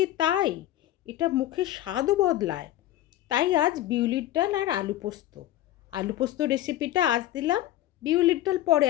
তাই, এটা মুখের স্বাদও বদলায়। তাই আজ বিউলির ডাল আর আলু পোস্ত। আলু পোস্ত রেসিপিটা আজ দিলাম, বিউলির ডাল পরে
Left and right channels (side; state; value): right; quieter; 14.0 dB